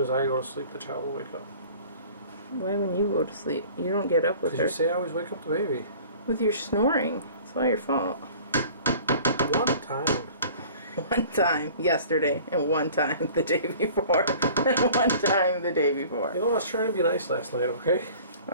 as I go to sleep, the child will wake up. Why when you go to sleep? You don't get up with her. Because you say I always wake up the baby. With your snoring. It's all your fault. One time. One time yesterday, and one time the day before, and one time the day before. You know, I was trying to be nice last night, okay?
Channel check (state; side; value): inverted; both; correlation -0.47